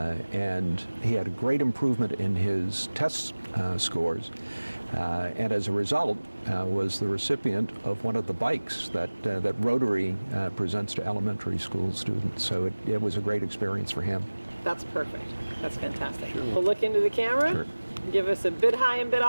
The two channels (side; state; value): both; inverted; correlation -1.00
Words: And he had a great improvement in his test scores. And as a result, was the recipient of one of the bikes that Rotary presents to elementary school students. So it was a great experience for him. That's perfect. That's fantastic. Sure. We'll look into the camera, Sure. Give us a bid high and bid